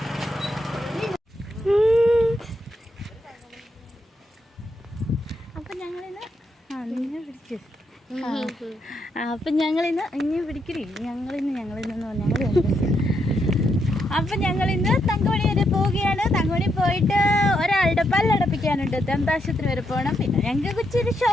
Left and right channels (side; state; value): both; normal; correlation 0.79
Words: അപ്പൊ ഞങ്ങളിന്ന് തങ്കമണി വരെ പോവുകയാണ്. തങ്കമണി പോയിട്ട് ഒരാളുടെ പല്ലടപ്പിക്കാനുണ്ട്, ദന്താശുപത്രി വരെ പോകണം. പിന്നെ ഞങ്ങൾക്ക് ഇച്ചിരി